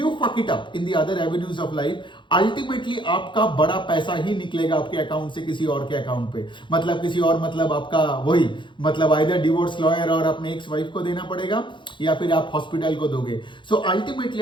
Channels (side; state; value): right; late; 0.23 ms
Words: fuck it up in the other avenues of life, ultimately आपका बड़ा पैसा ही निकलेगा आपके अकाउंट से किसी और के अकाउंट पे, मतलब किसी और, मतलब आपका वही, मतलब आइदर डिवोर्स लॉयर और अपने एक्स वाइफ को देना पड़ेगा या फिर आप हॉस्पिटल को दोगे। So ultimately